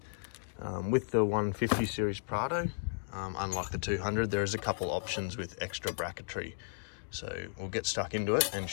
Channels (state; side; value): silent; right; digital silence